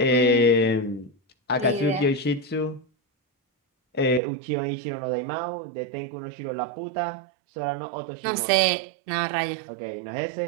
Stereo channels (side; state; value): left; drops out; at 4.2 s